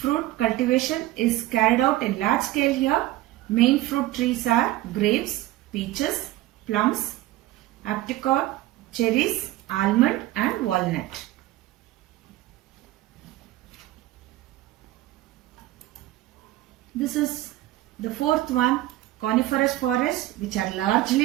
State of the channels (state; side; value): quieter; left; 16.0 dB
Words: cultivation is carried out in large scale here. Main fruit trees are grapes, peaches, plums, apricot, cherries, almond and walnut. This is the fourth one, coniferous forests, which are